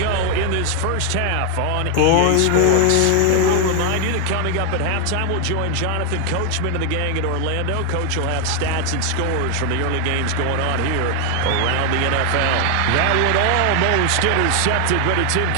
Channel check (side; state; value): both; different; correlation 0.00